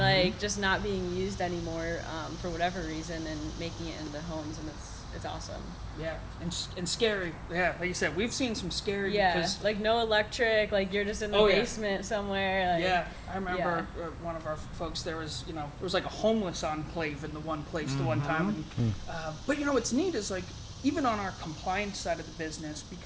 just not being used anymore for whatever reason and making it into homes, and it's awesome. Yeah, and scary. Yeah, like you said, we've seen some scary. Yeah, because, like no electric, like you're just in the basement somewhere. Like, yeah, I remember one of our folks. There was like a homeless enclave in the one place the one time. And, but what's neat is like even on our compliance side of the business,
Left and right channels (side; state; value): both; identical; correlation 1.00